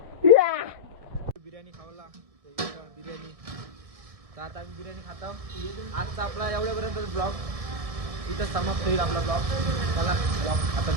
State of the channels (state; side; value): late; left; 1.6 ms